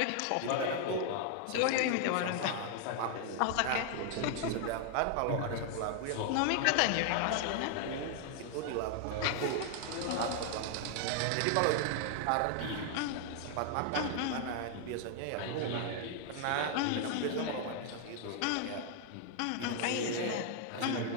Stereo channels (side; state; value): both; different; correlation 0.00